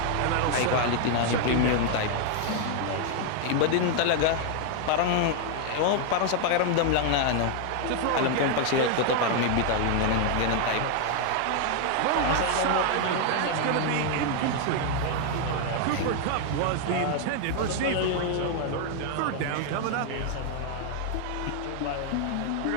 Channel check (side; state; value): both; different; correlation 0.00